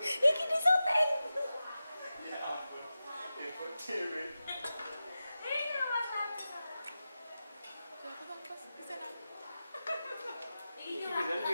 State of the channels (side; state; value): both; inverted; correlation -0.93